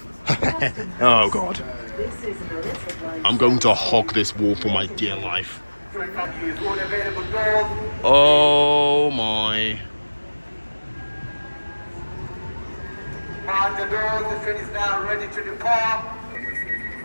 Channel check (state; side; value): inverted; both; correlation -1.00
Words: Oh God. I'm going to hog this wall for my dear life. Oh my. And the doors, the train is now ready to depart.